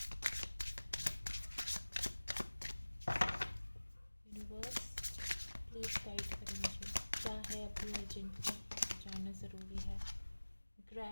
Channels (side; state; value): both; inverted; correlation -1.00